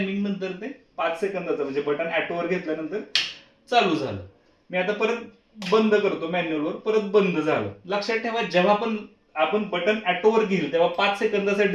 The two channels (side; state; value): both; identical; correlation 1.00